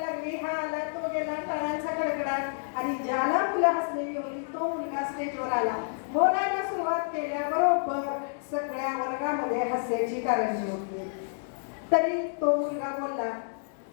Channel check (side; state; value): right; silent; digital silence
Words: लागली. हा आला, तो गेला, टाळ्यांचा कडकडाट. आणि ज्याला मुलं हसलेली होती तो मुलगा स्टेजवर आला. बोलायला सुरुवात केल्याबरोबर सगळ्या वर्गामध्ये हास्याची कारंजी होती. तरी तो मुलगा बोलला.